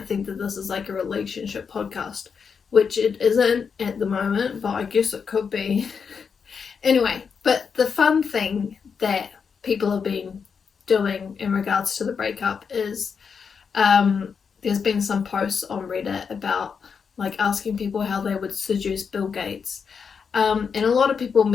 think that this is like a relationship podcast, which it isn't at the moment, but I guess it could be. Anyway, but the fun thing that people have been doing in regards to the breakup is there's been some posts on Reddit about like asking people how they would seduce Bill Gates, and a lot of people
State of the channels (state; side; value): quieter; right; 6.1 dB